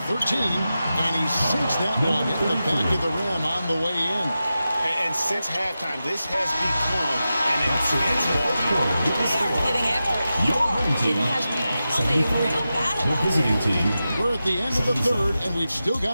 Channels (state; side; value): inverted; both; correlation -0.92